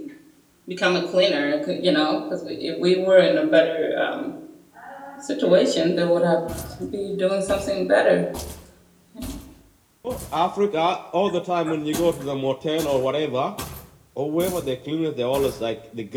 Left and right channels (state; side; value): identical; both; correlation 1.00